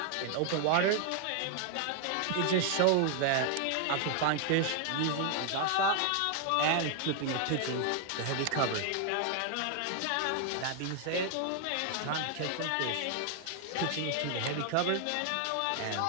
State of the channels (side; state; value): both; different; correlation 0.00